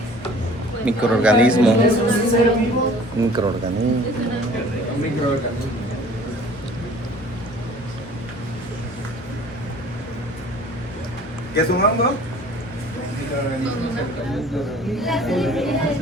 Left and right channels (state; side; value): normal; both; correlation 0.49